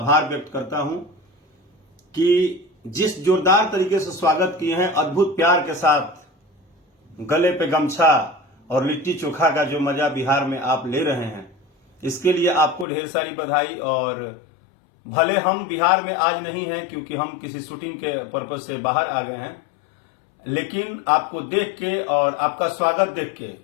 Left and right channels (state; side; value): drops out; right; at 12.9 s